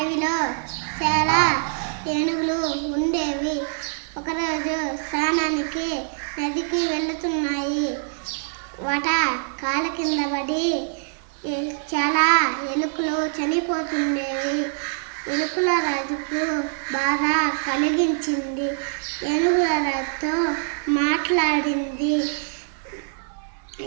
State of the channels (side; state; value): left; silent; digital silence